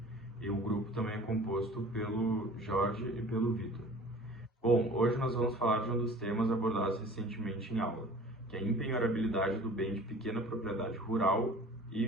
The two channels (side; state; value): both; normal; correlation 0.45